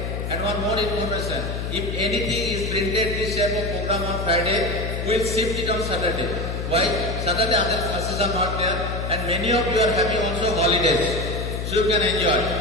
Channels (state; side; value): noise; left; hum, 4 dB below the sound